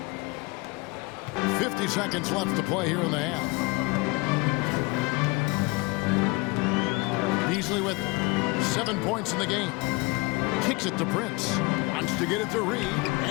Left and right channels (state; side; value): quieter; right; 25.9 dB